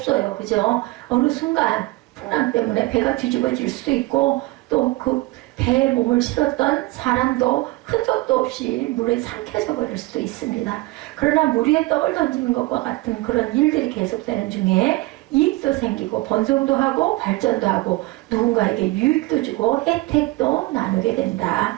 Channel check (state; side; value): quieter; left; 20.9 dB